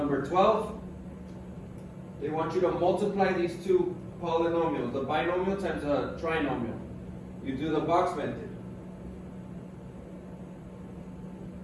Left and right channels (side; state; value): both; identical; correlation 1.00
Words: 12. They want you to multiply these two polynomials, the binomial times a trinomial. You do the box method.